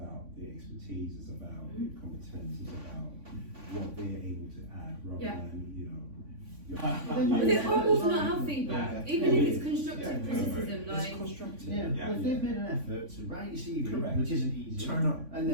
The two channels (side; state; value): left; late; 3.5 ms